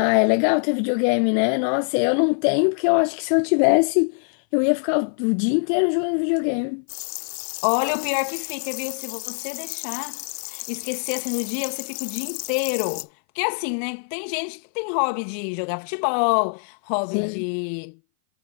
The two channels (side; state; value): right; silent; 59 dB below the other